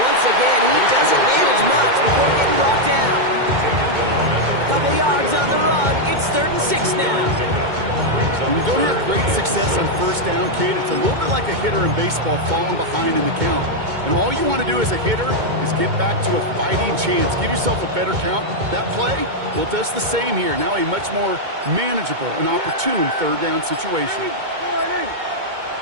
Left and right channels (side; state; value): left; late; 2.2 ms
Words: once again, he doesn't manage much before getting brought down. A couple yards on the run. It's 3rd and 6 now. When you don't have great success on first down, Kate, it's a little bit like a hitter in baseball falling behind in the count. And all you want to do as a hitter is get back to a fighting chance. Give yourself a better count. That play, well, it does the same here. Now a much more manageable and opportune 3rd down situation.